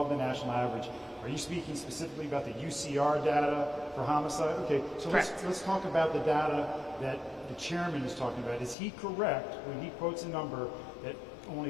the national average, are you speaking specifically about the UCR data for homicide? Okay, so let's talk about the data that the chairman is talking about. Is he correct when he quotes a number that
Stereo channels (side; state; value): right; drops out; at 8.8 s